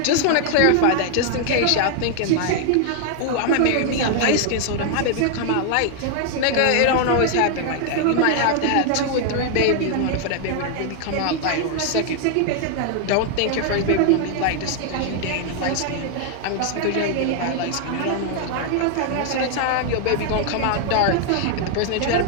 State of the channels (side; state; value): both; different; correlation 0.00